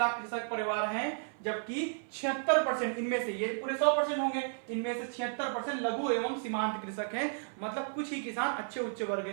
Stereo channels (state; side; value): silent; left; 56 dB below the other